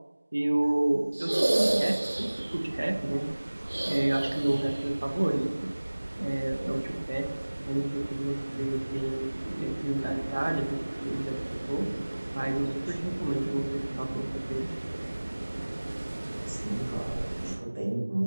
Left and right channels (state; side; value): inverted; both; correlation -1.00